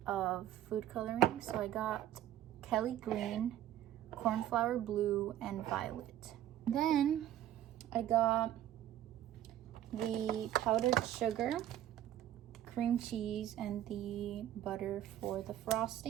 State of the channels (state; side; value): quieter; left; 12.1 dB